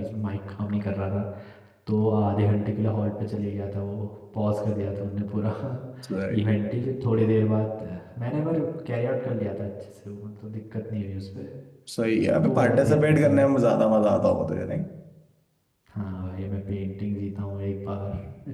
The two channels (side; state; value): both; identical; correlation 1.00